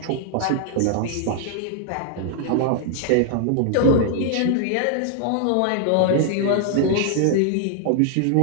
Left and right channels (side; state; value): both; different; correlation 0.00